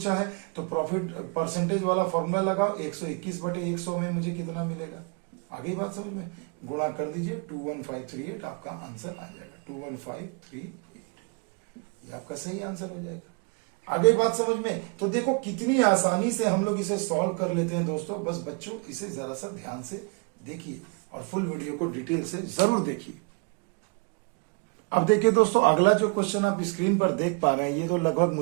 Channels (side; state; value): left; quieter; 33.3 dB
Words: है, तो प्रॉफिट परसेंटेज वाला फॉर्मूला लगाओ, 121/100 में मुझे कितना मिलेगा। आगे बात समझ में, गुणा कर दीजिए, 21538 आपका आंसर आ जाएगा, 21538, ये आपका सही आंसर हो जाएगा। आगे बात समझ में। तो देखो कितनी आसानी से हम लोग इसे सॉल्व कर लेते हैं दोस्तों। बस बच्चों इसे जरा सा ध्यान से देखिए, और फुल वीडियो को डिटेल से जरूर देखिए। अब देखिए दोस्तों, अगला जो क्वेश्चन आप स्क्रीन पर देख पा रहे हैं, ये तो लगभग